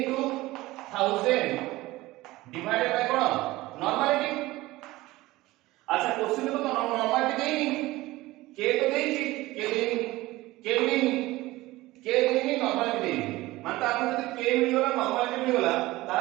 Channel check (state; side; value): quieter; left; 18.8 dB